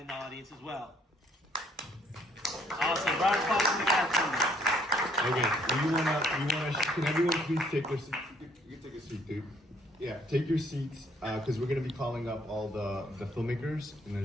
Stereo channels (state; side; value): normal; both; correlation 0.64